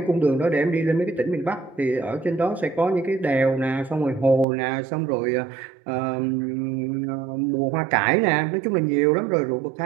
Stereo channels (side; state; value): left; drops out; at 4.5 s